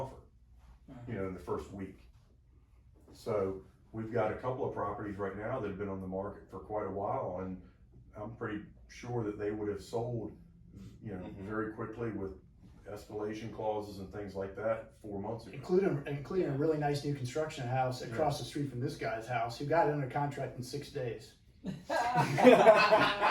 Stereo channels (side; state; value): both; identical; correlation 1.00